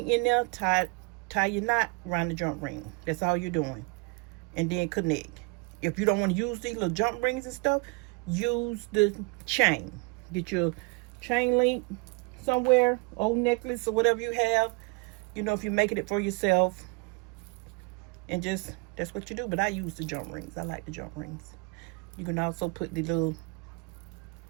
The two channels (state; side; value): quieter; left; 29.0 dB